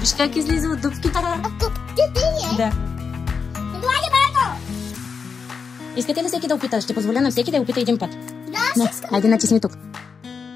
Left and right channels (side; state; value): right; quieter; 5.7 dB